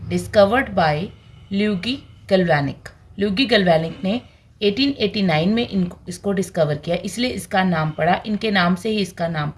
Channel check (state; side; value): identical; both; correlation 1.00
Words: Discovered by Luigi Galvanic. Luigi Galvanic ने 1889 में इसको डिस्कवर किया, इसलिए इसका नाम पड़ा, इनके नाम से ही इसका नाम